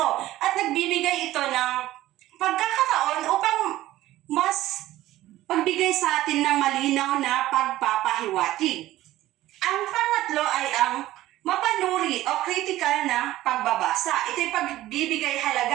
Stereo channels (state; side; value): quieter; left; 15.4 dB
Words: at nagbibigay ito ng pagkakataon upang mas pagbigay sa atin ng malinaw na pagpapahiwatig. Ang pangatlo ay ang mapanuri o critical na pagbabasa. Ito'y pagbibigay